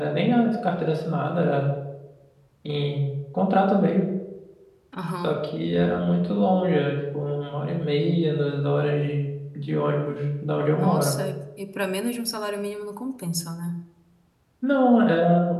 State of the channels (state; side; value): identical; both; correlation 1.00